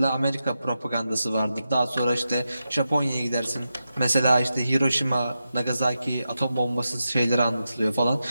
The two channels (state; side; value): inverted; both; correlation -0.89